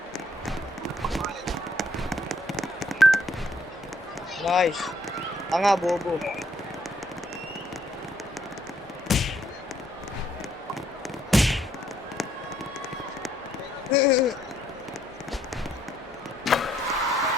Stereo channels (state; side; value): normal; both; correlation 0.69